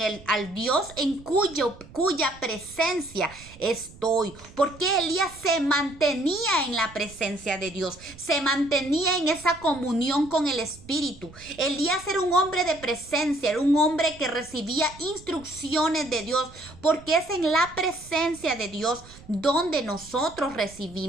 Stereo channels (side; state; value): right; noise; rumble, 20 dB below the sound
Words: al Dios en cuya presencia estoy, porque Elías se mantenía en la presencia de Dios, se mantenía en esa comunión con el Espíritu. Elías era un hombre de presencia, era un hombre que recibía instrucciones de Dios, porque es en la presencia de Dios donde nosotros